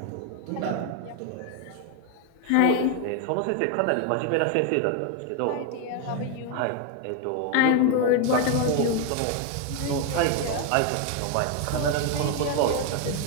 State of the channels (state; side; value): different; both; correlation 0.01